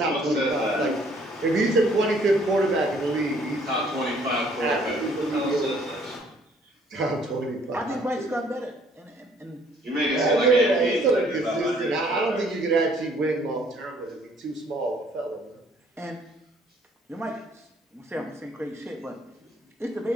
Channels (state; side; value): normal; both; correlation 0.61